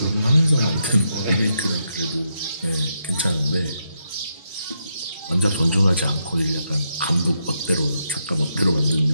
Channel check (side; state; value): both; inverted; correlation -0.81